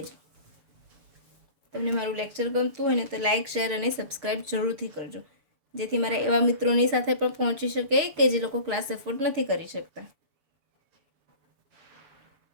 તમને મારું લેક્ચર ગમતું હોય ને તો લાઈક શેર અને સબસ્ક્રાઇબ જરૂરથી કરજો, જેથી મારા એવા મિત્રોની સાથે પણ પહોંચી શકે કે જે લોકો ક્લાસ એફોર્ડ નથી કરી શકતા.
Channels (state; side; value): late; left; 7.0 ms